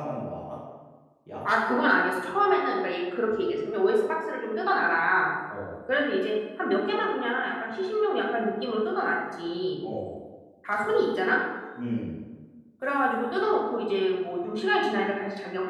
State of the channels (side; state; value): both; identical; correlation 1.00